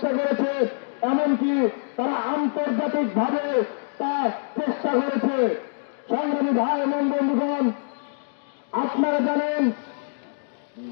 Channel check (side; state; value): right; silent; digital silence